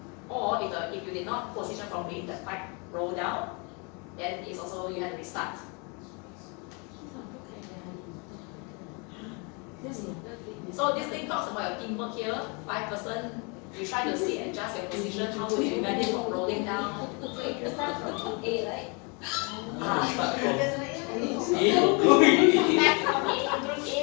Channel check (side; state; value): right; quieter; 32.7 dB